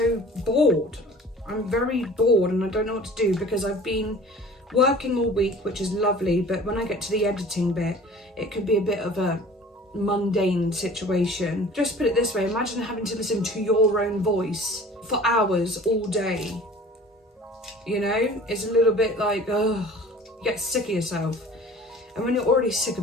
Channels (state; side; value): normal; both; correlation 0.45